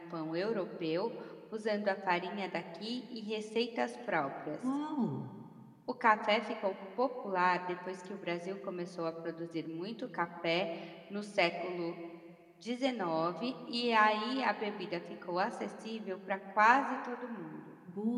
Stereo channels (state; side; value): identical; both; correlation 1.00